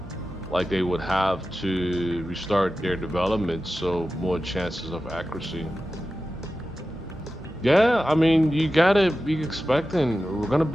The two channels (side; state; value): both; normal; correlation 0.93